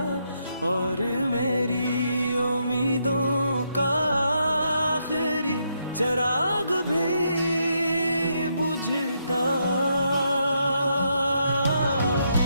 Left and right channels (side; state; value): both; inverted; correlation -0.78